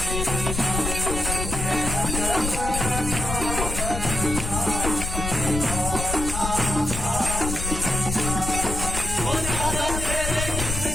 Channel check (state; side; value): noise; left; rumble, 4 dB below the sound